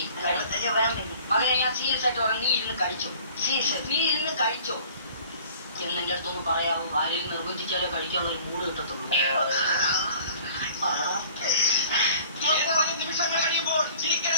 അതെ, ഞാൻ സീരിയസ് ആയിട്ട് പറയാം. നീ ഇരുന്ന് കഴിച്ചോ. നീ ഇരുന്ന് കഴിച്ചോ എന്നെന്റെ അടുത്തൊന്ന് പറയാവോ? ആരെയും നിർബന്ധിച്ചാലേ കഴിക്കാനുള്ള ഒരു മൂഡ് കിട്ടത്തുള്ളൂ. നിമിഷങ്ങൾ കഴിയുമ്പോൾ ചിരിക്കര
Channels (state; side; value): inverted; both; correlation -0.49